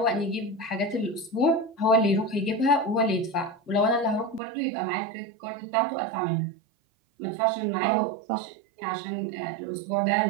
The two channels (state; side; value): drops out; left; at 4.4 s